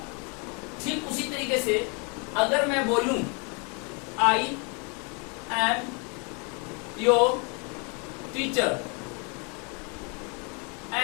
ठीक उसी तरीके से अगर मैं बोलूं I am your teacher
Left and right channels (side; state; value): right; quieter; 34.2 dB